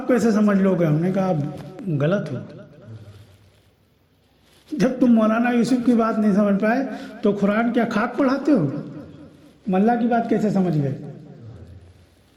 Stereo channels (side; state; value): both; identical; correlation 1.00